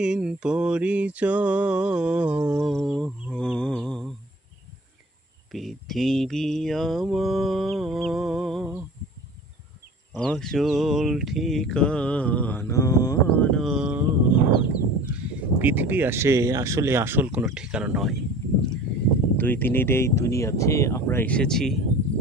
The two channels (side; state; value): both; normal; correlation 0.44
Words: পরিচয়। পৃথিবী আমার আসল ঠিকানা নয়। পৃথিবী আসলে আসল কোনো ঠিকানা নয়। দুই দিনের এই দুনিয়াতে আমরা এসেছি,